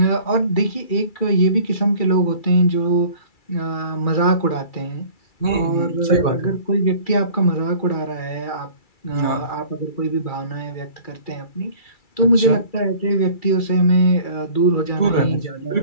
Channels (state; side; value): late; right; 2.3 ms